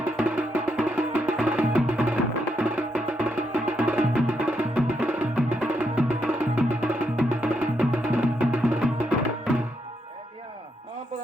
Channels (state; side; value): normal; both; correlation 0.79